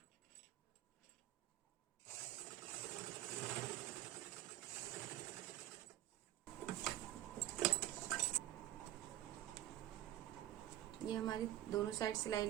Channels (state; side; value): quieter; left; 14.0 dB